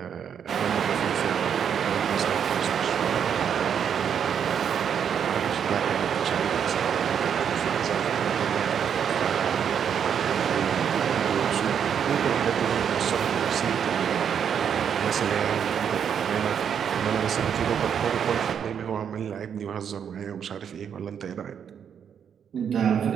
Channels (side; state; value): left; quieter; 8.0 dB